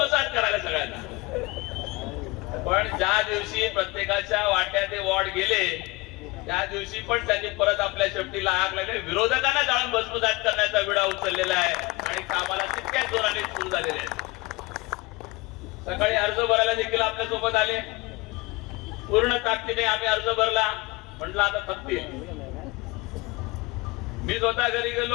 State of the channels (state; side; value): quieter; right; 23.8 dB